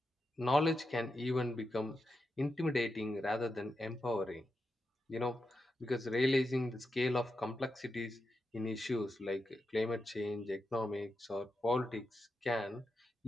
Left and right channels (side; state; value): both; normal; correlation 0.87